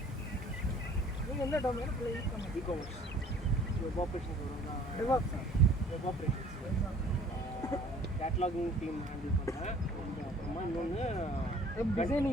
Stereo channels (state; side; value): normal; both; correlation 0.53